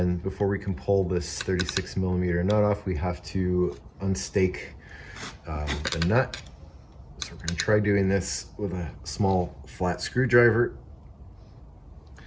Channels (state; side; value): identical; both; correlation 1.00